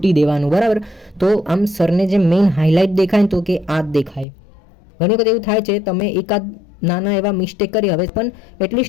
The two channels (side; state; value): right; drops out; at 4.2 s